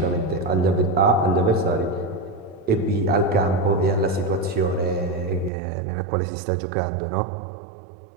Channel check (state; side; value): drops out; left; at 5.5 s